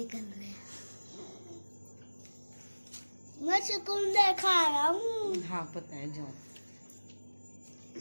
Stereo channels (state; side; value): inverted; both; correlation -1.00